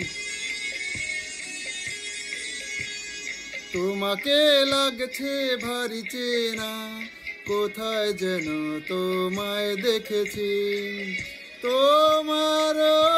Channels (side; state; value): both; identical; correlation 1.00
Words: তোমাকে লাগছে ভারী চেনা, কোথায় যেন তোমায় দেখেছি। তোমার